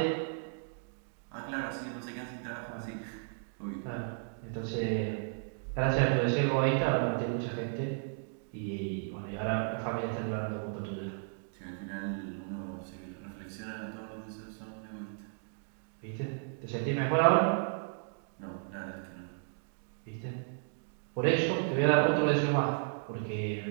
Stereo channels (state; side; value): silent; left; digital silence